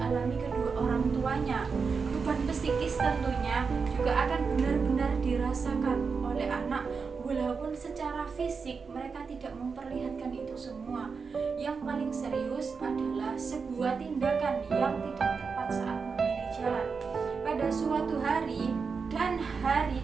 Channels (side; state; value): left; quieter; 5.2 dB